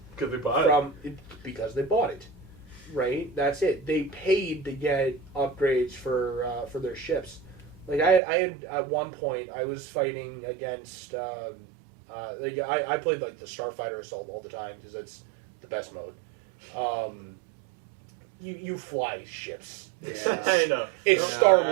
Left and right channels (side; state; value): left; drops out; at 8.2 s